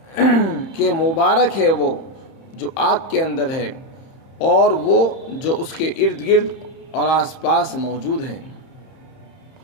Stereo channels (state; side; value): late; right; 30 ms